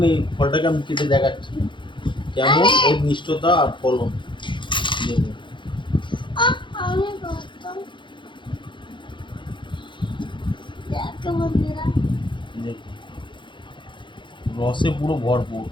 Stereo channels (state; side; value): late; right; 0.23 ms